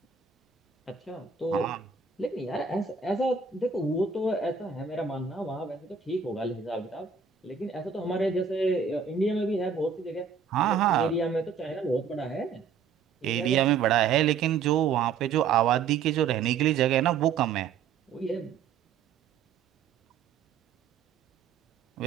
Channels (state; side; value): quieter; left; 6.3 dB